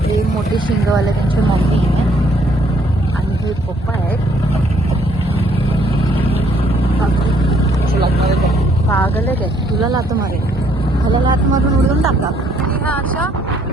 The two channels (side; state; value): both; normal; correlation 0.66